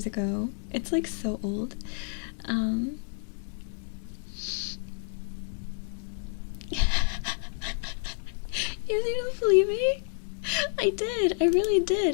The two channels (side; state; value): right; silent; 58 dB below the other